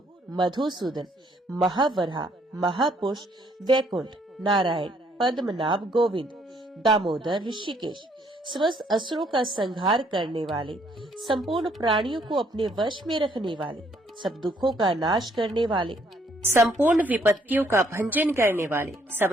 मधुसूदन, महावराह, महापुरुष, वैकुंठ, नारायण, पद्मनाभ, गोविंद, दामोदर, ऋषिकेश, समस्त असुरों का संहार करने वाले, संपूर्ण प्राणियों को अपने वश में रखने वाले, सब दुखों का नाश करने वाले, संपूर्ण विपत्तियों का भंजन करने वाले, सब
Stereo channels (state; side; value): normal; both; correlation 0.67